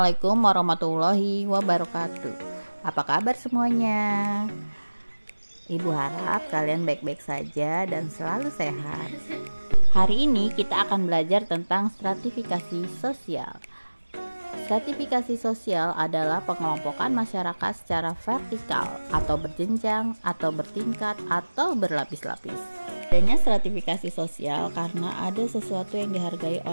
warahmatullahi wabarakatuh. Apa kabar semuanya? Ibu harap kalian baik-baik saja dan selalu sehat. Hari ini kita akan belajar tentang stratifikasi sosial. Stratifikasi sosial adalah pengelompokan masyarakat secara vertikal atau berjenjang atau bertingkat atau berlapis-lapis. Adanya stratifikasi sosial karena ada sesuatu yang dihargai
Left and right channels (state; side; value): inverted; both; correlation -1.00